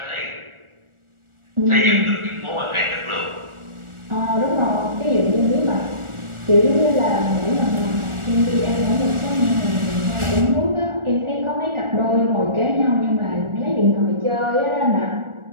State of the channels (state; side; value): late; left; 1.4 ms